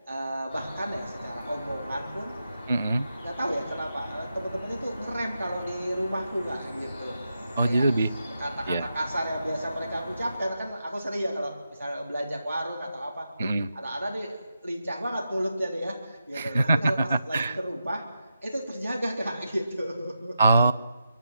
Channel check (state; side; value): inverted; both; correlation -0.87